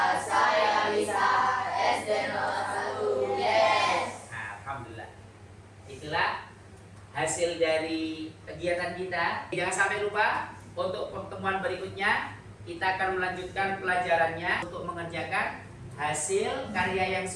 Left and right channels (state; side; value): identical; both; correlation 1.00